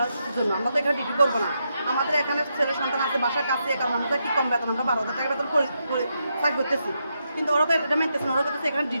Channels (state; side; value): inverted; both; correlation -0.83